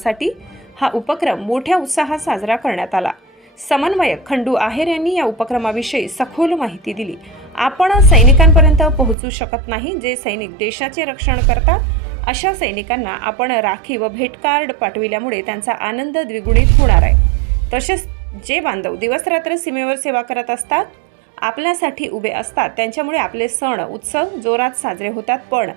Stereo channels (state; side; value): drops out; left; at 9.2 s